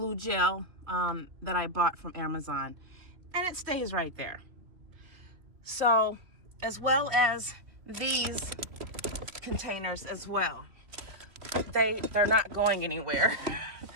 gel that I bought from Amazon, and it stays right there. So, as well as these containers as well, they're not going anywhere.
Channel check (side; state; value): left; late; 2.9 ms